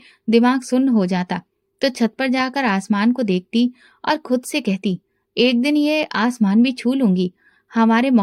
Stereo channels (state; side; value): identical; both; correlation 1.00